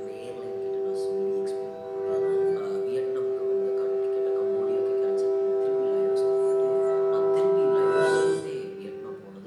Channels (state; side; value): identical; both; correlation 1.00